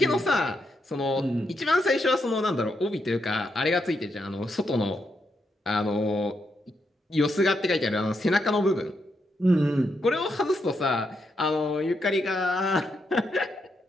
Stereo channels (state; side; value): normal; both; correlation 0.81